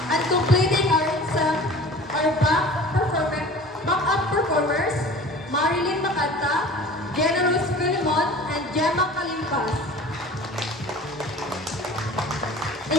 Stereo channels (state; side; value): normal; both; correlation 0.42